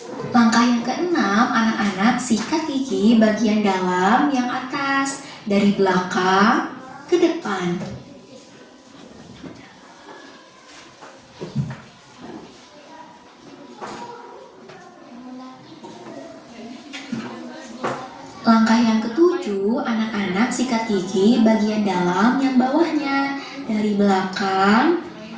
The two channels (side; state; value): both; identical; correlation 1.00